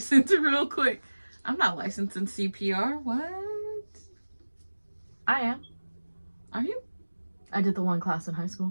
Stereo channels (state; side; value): inverted; both; correlation -1.00